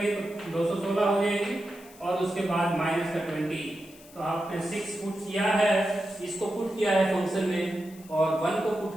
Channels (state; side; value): noise; left; hiss, 22 dB below the sound